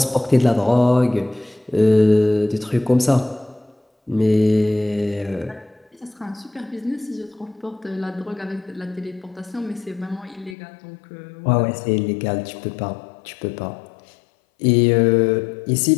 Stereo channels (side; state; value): right; drops out; at 10.6 s